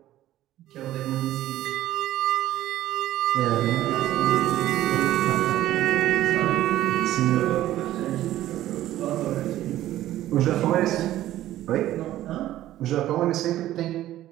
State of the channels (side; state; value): left; quieter; 14.0 dB